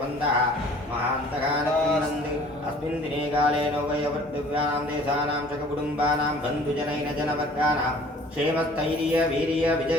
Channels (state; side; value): normal; both; correlation 0.51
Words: महान्तकान् कृण्वन्तु अस्मिन् दिने काले नौवयवर्दिव्यानां देशानां शककुटुम्बानां बन्धुजनैन जनवर्गानां क्षेमस्थैर्य वीर्य